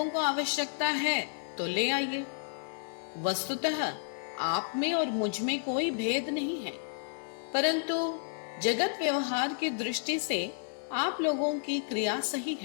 को आवश्यकता है तो ले आइए। वस्तुतः आप में और मुझ में कोई भेद नहीं है, परंतु जगत व्यवहार की दृष्टि से आप लोगों की क्रिया सही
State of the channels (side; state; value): right; silent; 57 dB below the other